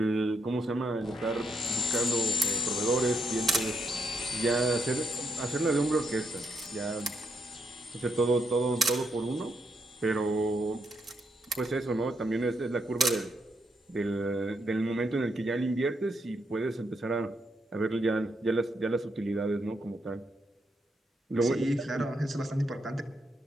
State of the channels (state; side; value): normal; both; correlation 0.78